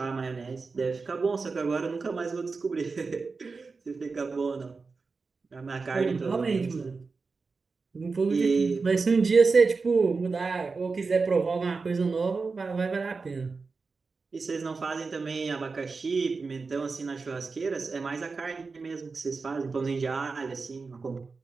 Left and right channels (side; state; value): left; quieter; 4.4 dB